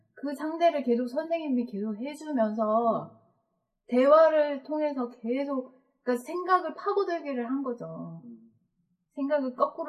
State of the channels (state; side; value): identical; both; correlation 1.00